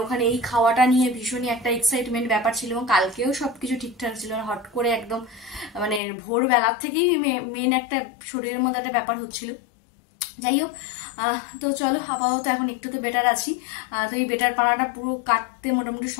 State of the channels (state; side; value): drops out; right; at 6.0 s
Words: ওখানে এই খাওয়াটা নিয়ে ভীষণই একটা এক্সাইটমেন্ট ব্যাপার ছিল, এবং কালকেও সবকিছু ঠিকঠাক ছিল। হট করে একদম মানে ভোরবেলার থেকেই মেন একটা শরীরের মধ্যে একটা ব্যাপার হচ্ছিল। যাই হোক, তো চলো আপাতত এখন একটু তো বেটার আছি। তো এই বেটার পানাটা পুরো কাটতে মোটামুটি